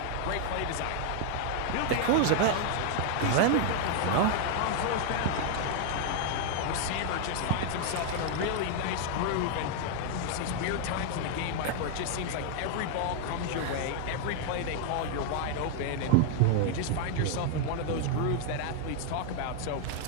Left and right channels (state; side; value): different; both; correlation 0.00